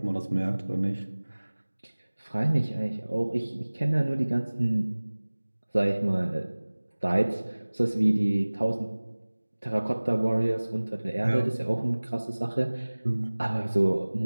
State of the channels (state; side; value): inverted; both; correlation -1.00